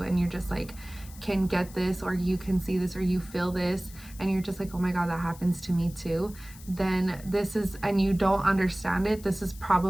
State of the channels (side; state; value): left; noise; hiss, 19 dB below the sound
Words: and you're just like can get this, or you can see this, or you feel this, and you're just like, oh my god, that happens to me too. Then this is, and you don't understand it, this is